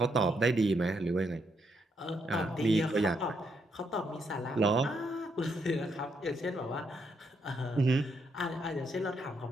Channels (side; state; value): both; normal; correlation 0.77